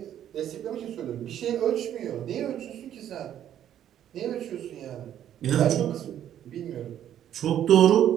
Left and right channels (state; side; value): quieter; left; 10.7 dB